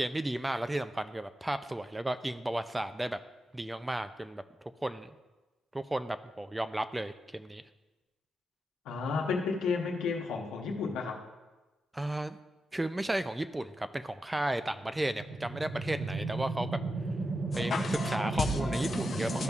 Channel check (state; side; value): normal; both; correlation 0.88